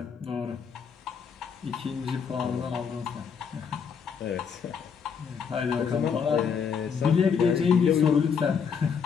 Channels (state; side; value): quieter; right; 6.6 dB